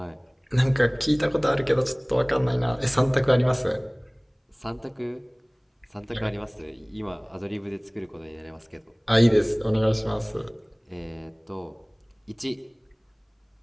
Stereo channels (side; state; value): both; identical; correlation 1.00